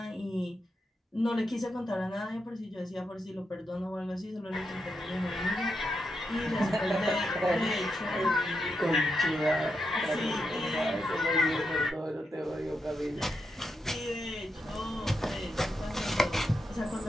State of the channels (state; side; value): normal; both; correlation 0.85